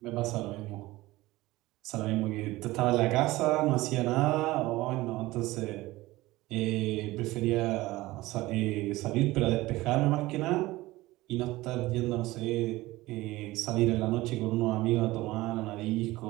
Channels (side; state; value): left; quieter; 18.8 dB